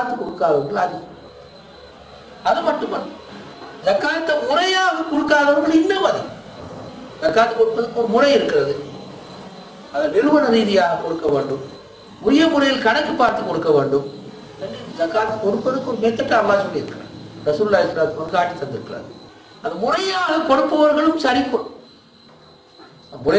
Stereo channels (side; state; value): both; identical; correlation 1.00